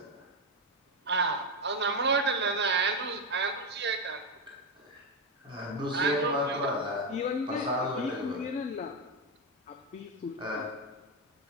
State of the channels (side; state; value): both; normal; correlation 0.08